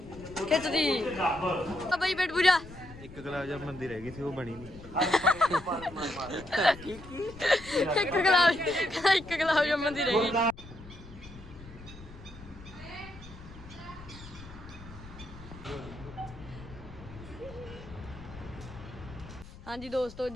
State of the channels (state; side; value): noise; left; rumble, 16 dB below the sound